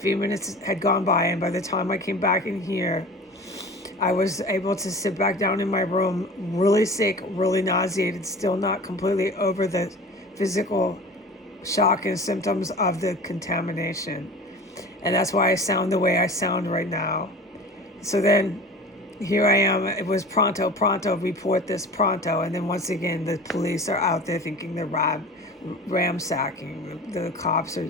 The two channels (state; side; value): normal; both; correlation 0.38